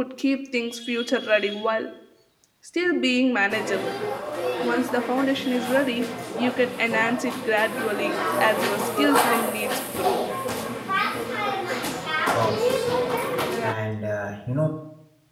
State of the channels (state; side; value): identical; both; correlation 1.00